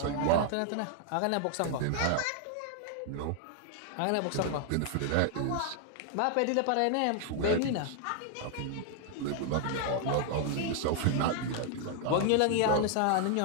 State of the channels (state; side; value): different; both; correlation 0.00